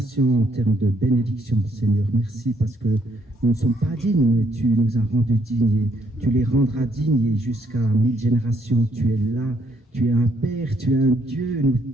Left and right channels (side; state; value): both; normal; correlation 0.71